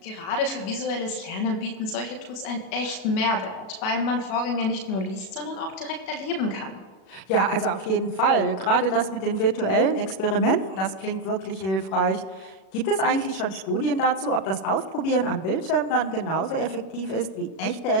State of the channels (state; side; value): late; right; 37 ms